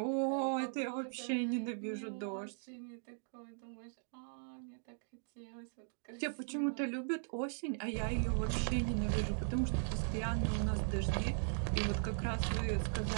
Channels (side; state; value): left; silent; digital silence